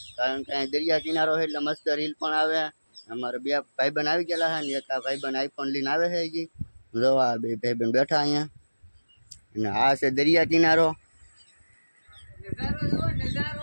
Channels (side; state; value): both; inverted; correlation -1.00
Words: કારણ કે દરિયા કિનારો છે એટલે મસ્ત રીલ પણ આવે। અમારે બે ભાઈબંધ આવી ગયેલા છે ને એક ભાઈબંધ આઈફોન લઈને આવે છે હજી। જો આ બે ભાઈબંધ બેઠા અહીંયા, અને આ છે દરિયા કિનારો।